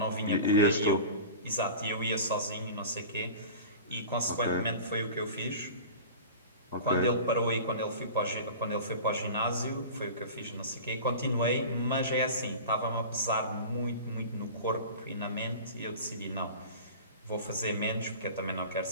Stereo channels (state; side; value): inverted; both; correlation -0.35